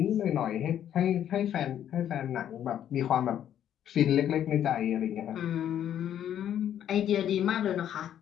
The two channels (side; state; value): right; quieter; 10.3 dB